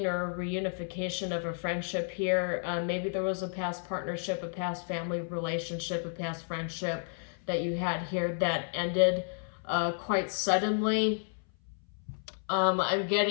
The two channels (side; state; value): right; silent; 57 dB below the other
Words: or a reunification of a friendship here. Maybe there was a past partnership, a past family relationship, a past friendship that you had here that ended quite suddenly. I'm